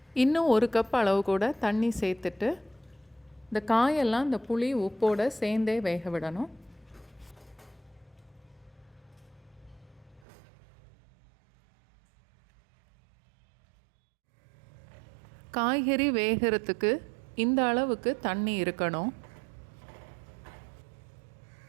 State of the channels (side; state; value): left; drops out; at 10.2 s